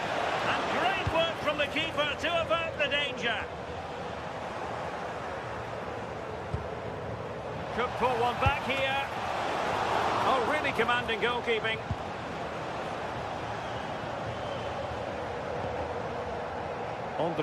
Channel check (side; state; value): both; identical; correlation 1.00